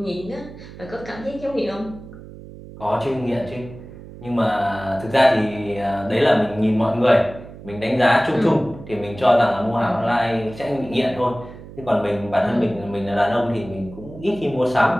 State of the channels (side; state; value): right; noise; hum, 16 dB below the sound